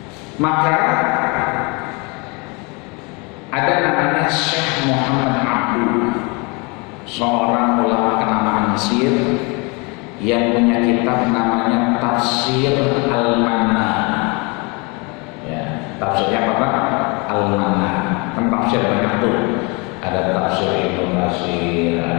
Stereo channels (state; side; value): quieter; right; 29.0 dB